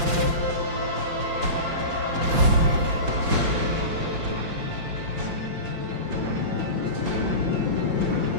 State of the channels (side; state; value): left; late; 5.7 ms